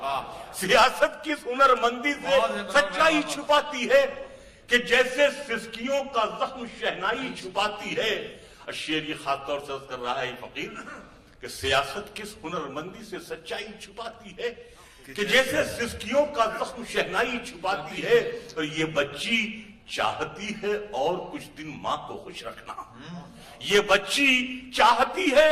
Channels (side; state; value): both; identical; correlation 1.00